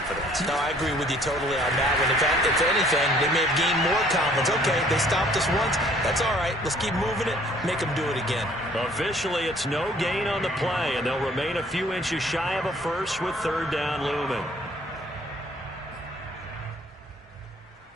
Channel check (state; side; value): normal; both; correlation 0.58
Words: No, I agree with you totally on that one. In fact, if anything, they may have gained more confidence. Okay, they stopped us once. That's all right. Let's keep moving it. Make them do it again. Officially, it's no gain on the play, and they'll remain a few inches shy of a first with third down looming.